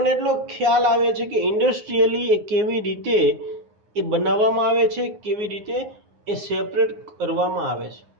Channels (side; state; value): left; late; 9.7 ms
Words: એટલો ખ્યાલ આવે છે કે ઇન્ડસ્ટ્રીયલી એ કેવી રીતે એ બનાવવામાં આવે છે, કેવી રીતે એ સેપરેટ કરવામાં આવે છે,